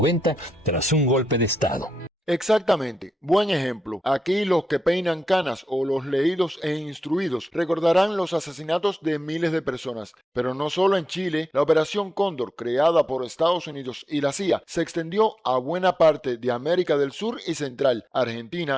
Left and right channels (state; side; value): normal; both; correlation 0.88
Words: tras un golpe de Estado. Exactamente, buen ejemplo. Aquí los que peinan canas o los leídos e instruidos recordarán los asesinatos de miles de personas. Pero no solo en Chile, la Operación Cóndor, creada por Estados Unidos y la CIA, se extendió a buena parte de América del Sur y Central,